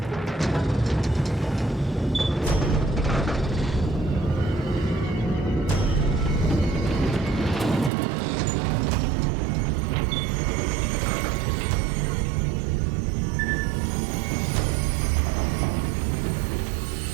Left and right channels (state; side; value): drops out; left; at 7.9 s